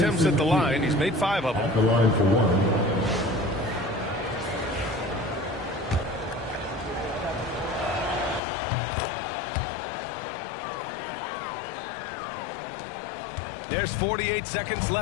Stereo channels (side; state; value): right; drops out; at 8.4 s